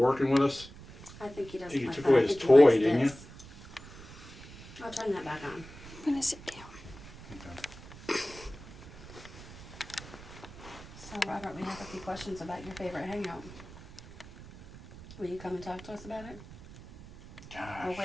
with us? I think he doesn't You like took that. away I his think he toy, likes didn't you? this. I'll turn that back on. I'm gonna sit down. Okay. So, Robert, we have a few questions about your favorite hangout. Will you come and talk to us about it? Gosh. Oh,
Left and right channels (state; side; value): noise; right; rumble, 17 dB below the sound